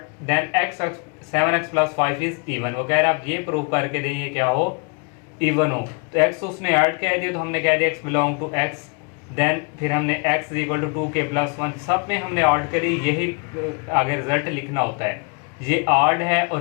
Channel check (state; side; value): quieter; right; 33.0 dB